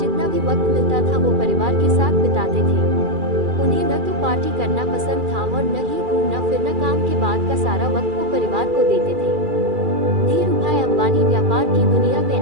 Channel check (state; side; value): late; left; 2.4 ms